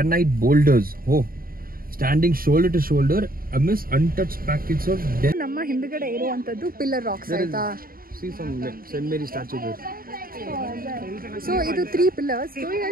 boulders, standing shoulder to shoulder amidst untouched packets of dead. ನಮ್ಮ ಹಿಂದ್ಗಡೆ ಇರುವಂತದ್ದು ಪಿಲ್ಲರ್ ರಾಕ್ಸ್ ಆಯ್ತಾ? See some St. Mary statue there. So ಇದು 3 pillars.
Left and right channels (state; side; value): late; left; 0.42 ms